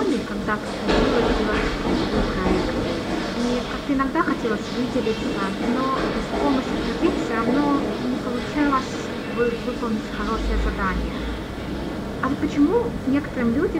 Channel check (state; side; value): identical; both; correlation 1.00